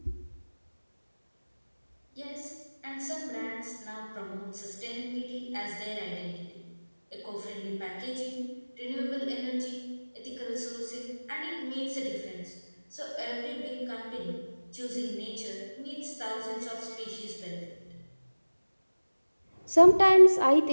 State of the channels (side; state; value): both; inverted; correlation -1.00